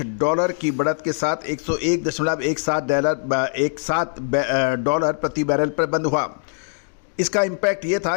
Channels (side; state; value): right; silent; digital silence